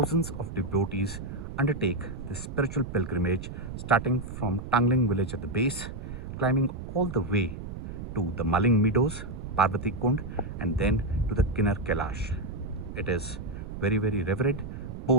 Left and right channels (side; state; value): right; noise; rumble, 8 dB below the sound